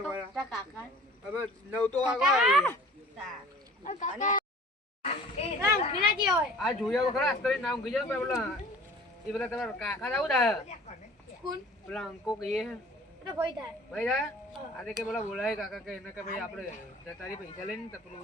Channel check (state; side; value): normal; both; correlation 0.47